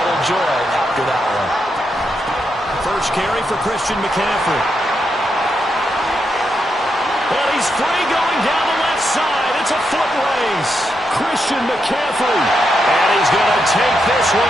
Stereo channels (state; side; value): normal; both; correlation 0.83